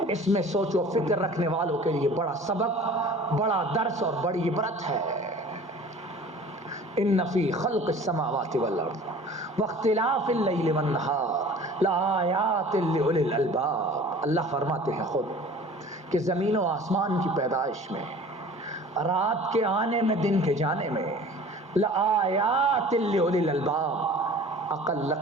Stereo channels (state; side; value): normal; both; correlation 0.45